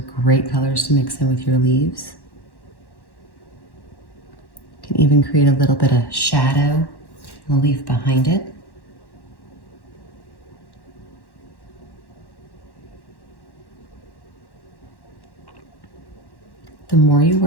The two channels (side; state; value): right; late; 1.1 ms